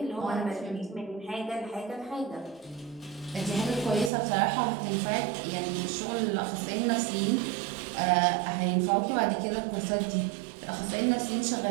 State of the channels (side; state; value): left; drops out; at 4.1 s